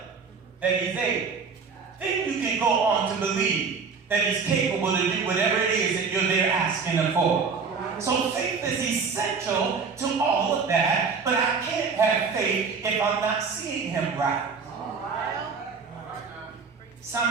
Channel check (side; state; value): left; quieter; 5.2 dB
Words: that he's able. Then you can go on to believe that he's capable to do whatever it is that you're there asking him for. So faith is essential to all of that, but I can't have faith if I'm not seeing him right.